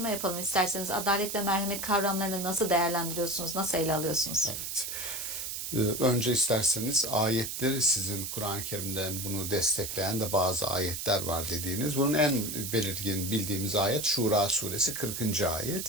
yapalım isterseniz. Adalet ve merhamet kavramlarını nasıl değerlendiriyorsunuz, nasıl ele alıyorsunuz? Evet. Önce isterseniz ayetleri, sizin Kur'an-ı Kerim'den bunu destekleyen de bazı ayetler var dediğiniz. Bunun en belirgin bildiğimiz ayet Şura suresi 40.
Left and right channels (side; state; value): right; noise; hiss, 5 dB below the sound